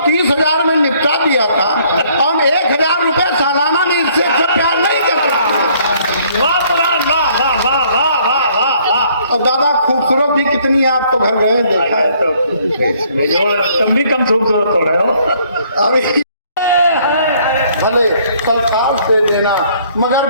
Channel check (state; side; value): inverted; both; correlation -0.63